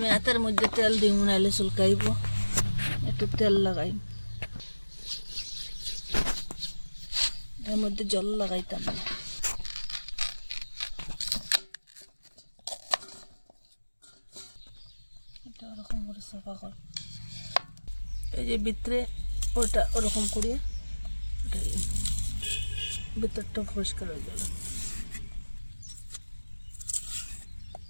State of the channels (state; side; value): inverted; both; correlation -1.00